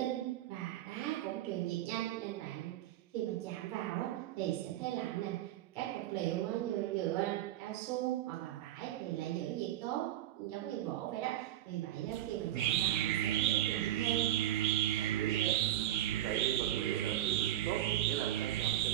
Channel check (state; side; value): quieter; left; 13.0 dB